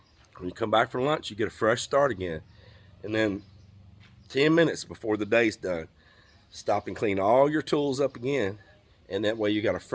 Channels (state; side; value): identical; both; correlation 1.00